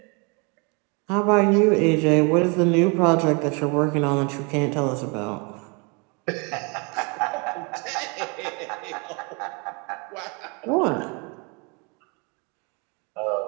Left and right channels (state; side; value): quieter; left; 32.1 dB